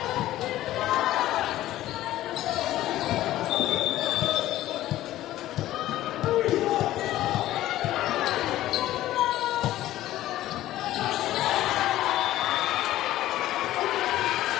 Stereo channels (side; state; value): right; quieter; 14.5 dB